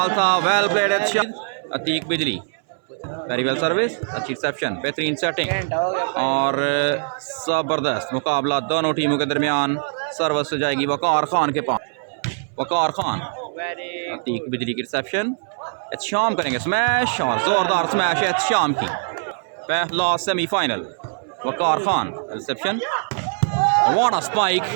था well played Atiq Bijli very well service, अच्छी रिसेप्शन, बेहतरीन सेटिंग और ज़बरदस्त मुकाबला दोनों टीमों के दरमियान। सर्विस जाएगी वकार खान के पास। वकार खान, अतीक बिजली की रिसेप्शन, एहतशाम करेंगे स्मैश और ज़ोरदार स्मैश एहतशाम की। पहला semifinal, Waqar Khan reception, what a spike,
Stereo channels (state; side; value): silent; left; 61 dB below the other